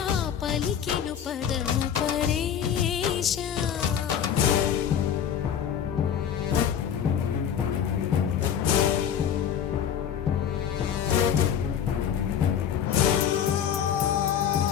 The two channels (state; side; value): quieter; right; 8.8 dB